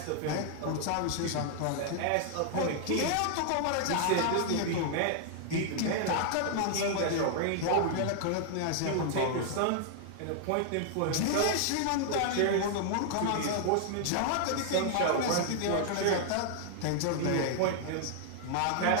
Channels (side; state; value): both; different; correlation -0.01